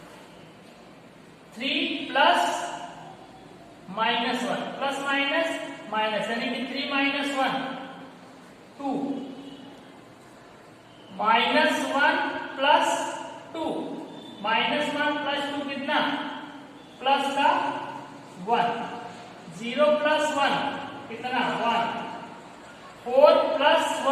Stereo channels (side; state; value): both; identical; correlation 1.00